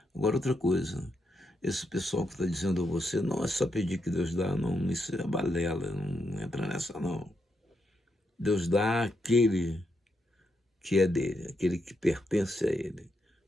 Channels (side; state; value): both; normal; correlation 0.81